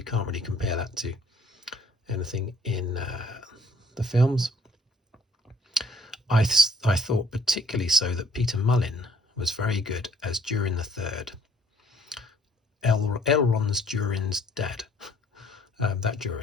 can't really compare that to anything in the films. I thought particularly so that Peter Mullin was very good as Durin the Third. Elrond's Durin's dad. That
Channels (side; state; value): both; normal; correlation 0.60